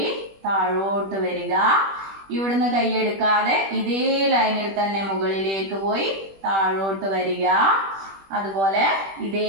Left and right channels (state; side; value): late; left; 21 ms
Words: താഴോട്ട് വരിക. ഇവിടുന്ന് കൈ എടുക്കാതെ ഇതേ ലൈനിൽ തന്നെ മുകളിലേക്ക് പോയി താഴോട്ട് വരിക. അതുപോലെ